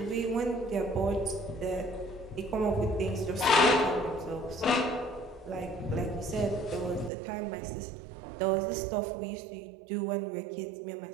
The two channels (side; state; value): left; drops out; at 7.1 s